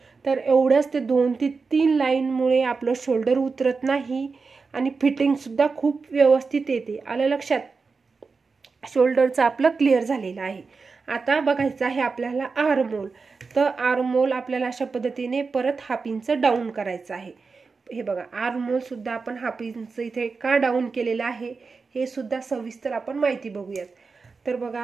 तर एवढंच ते 2 ते 3 लाईनमुळे आपलं शोल्डर उतरत नाही आणि फिटिंगसुद्धा खूप व्यवस्थित येते. आलं लक्षात. शोल्डरचं आपलं क्लिअर झालेलं आहे. आता बघायचं आहे आपल्याला आर्महोल. तर आर्महोल आपल्याला अशा पद्धतीने परत 1/2 इंच डाऊन करायचं आहे. हे बघा, आर्महोल सुद्धा आपण 1/2 इंच इथे का डाऊन केलेलं आहे हे सुद्धा सविस्तर आपण माहिती बघूयात. तर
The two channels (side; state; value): left; quieter; 4.6 dB